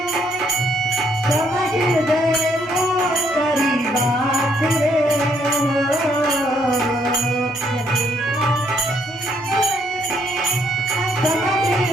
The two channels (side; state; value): both; normal; correlation 0.70